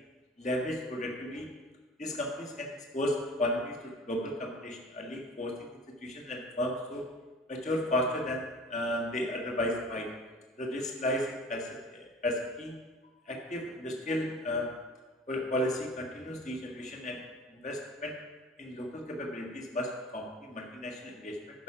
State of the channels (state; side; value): normal; both; correlation 0.43